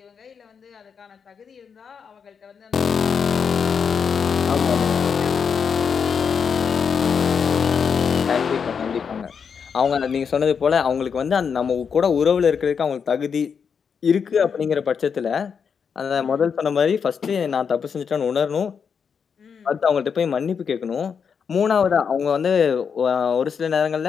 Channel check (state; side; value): quieter; right; 6.5 dB